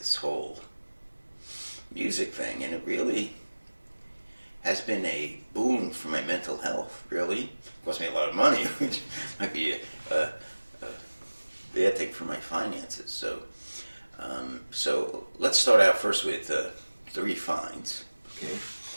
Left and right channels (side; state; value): both; inverted; correlation -1.00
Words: whole music thing. And it really has been a boon for my mental health, really. It cost me a lot of money, which might be a bad thing for my finances. So let's start out first with three finds. Okay.